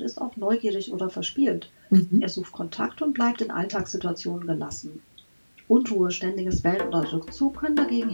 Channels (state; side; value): inverted; both; correlation -1.00